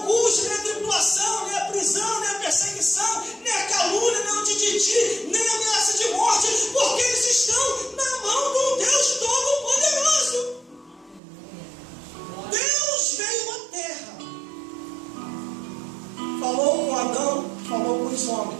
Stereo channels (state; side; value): drops out; left; at 11.2 s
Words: nem a tribulação, nem a prisão, nem a perseguição, nem a calúnia, nem o tititi, nem a ameaça de morte, porque eles estão na mão do Deus Todo-Poderoso. Deus veio à terra dos